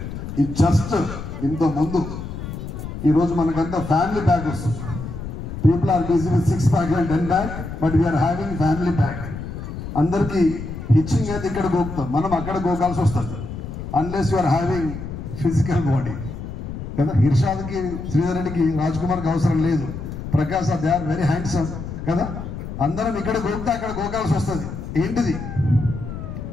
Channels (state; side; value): noise; left; rumble, 8 dB below the sound